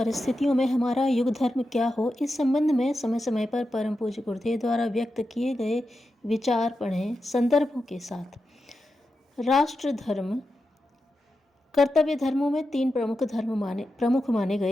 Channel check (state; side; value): normal; both; correlation 0.89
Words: में हमारा युग धर्म क्या हो, इस संबंध में समय समय पर परम पूज्य गुरुदेव द्वारा व्यक्त किए गए विचार पढ़ें संदर्भों के साथ। राष्ट्र धर्म कर्तव्य धर्मों में तीन प्रमुख माने